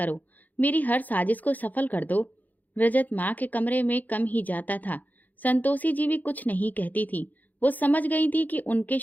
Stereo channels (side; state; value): right; late; 0.082 ms